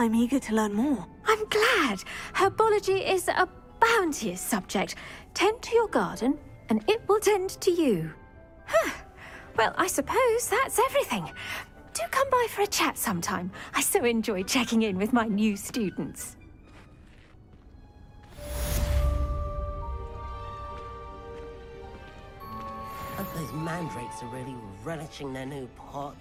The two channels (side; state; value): both; identical; correlation 1.00